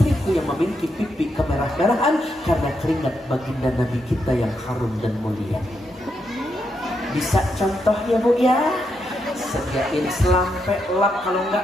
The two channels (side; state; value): both; normal; correlation 0.81